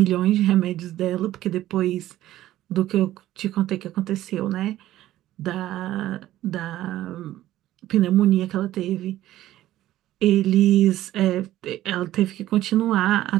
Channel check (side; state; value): left; quieter; 14.2 dB